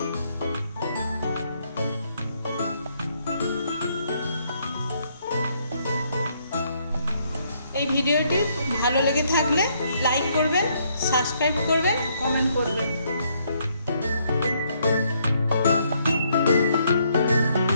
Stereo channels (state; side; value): inverted; both; correlation -0.71